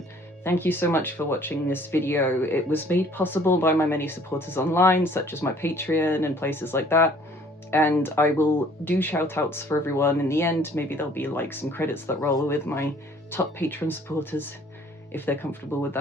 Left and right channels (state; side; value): normal; both; correlation 0.56